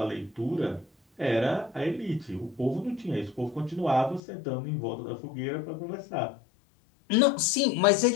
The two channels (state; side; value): drops out; right; at 4.2 s